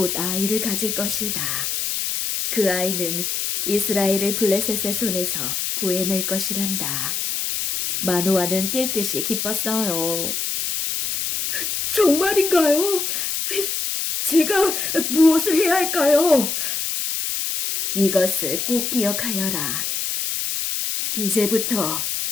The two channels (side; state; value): left; noise; hiss, 2 dB below the sound